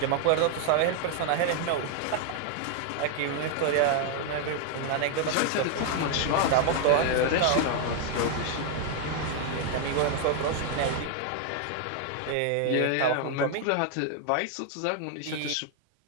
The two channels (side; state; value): both; different; correlation 0.00